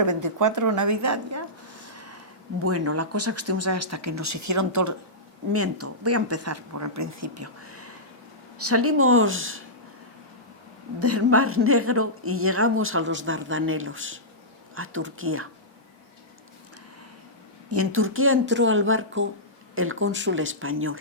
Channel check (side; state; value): both; normal; correlation -0.15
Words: 24 Navidad ya. Bueno, la cosa que estuvimos ahí hasta que nos hicieron todo... Miento, voy a empezar por el principio. Salimos del Mar Negro y llegamos a los Dardanelos, a Turquía. Y en Turquía entró al barco el cónsul español.